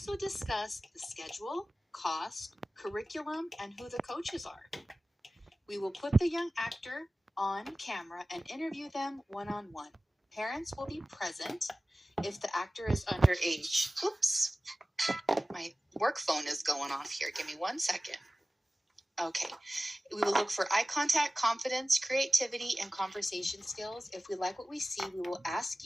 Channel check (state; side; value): normal; both; correlation 0.97